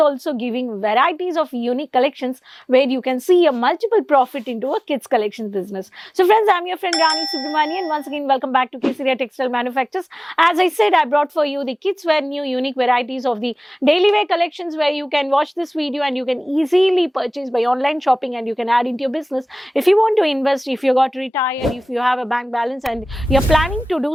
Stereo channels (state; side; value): normal; both; correlation 0.98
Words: giving varieties of unique collections where you can see a multiple profit into a kids collections business. So friends, I'm your friend Rani Subramani and once again welcome back to Kesaria Textile Manufacturers. As I said, I brought for you the kids wear new unique varieties of the daily wear collections where you can watch this video and you can easily purchase by online shopping and you can add into your business. If you want to invest, if you got retired, if you have a bank balance and you're planning to do